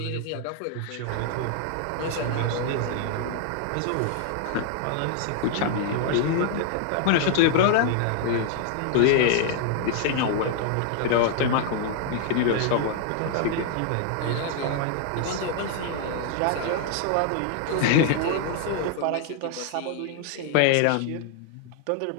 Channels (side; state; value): both; different; correlation 0.00